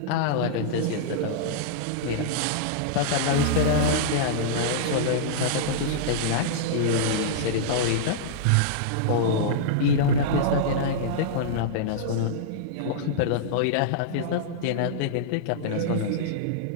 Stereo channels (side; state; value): both; different; correlation -0.02